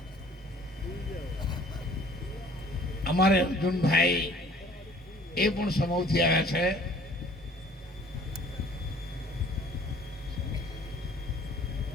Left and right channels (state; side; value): normal; both; correlation 0.54